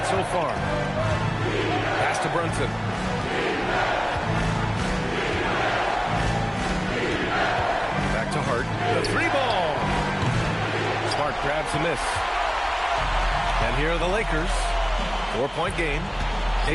so far. Pass to Brunson. To Hart. The 3-ball. Smart grabs a miss. And here are the Lakers. 4-point game.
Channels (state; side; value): identical; both; correlation 1.00